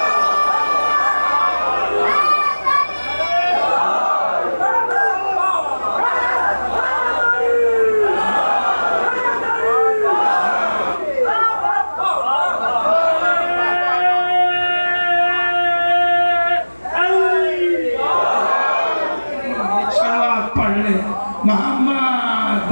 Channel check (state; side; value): inverted; both; correlation -1.00